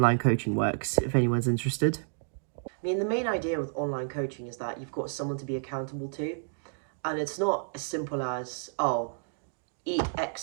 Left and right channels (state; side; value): silent; left; digital silence